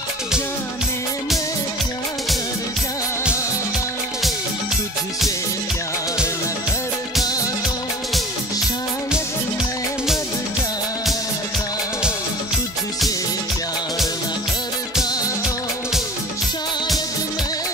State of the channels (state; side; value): normal; both; correlation 0.42